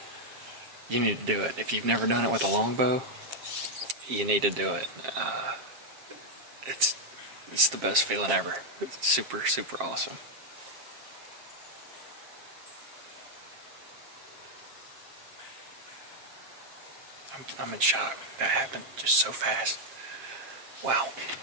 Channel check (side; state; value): left; late; 7.4 ms